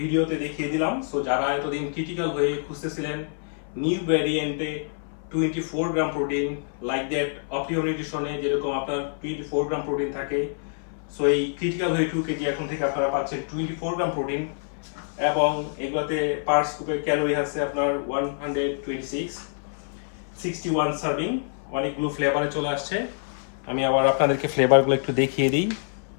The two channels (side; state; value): right; silent; 57 dB below the other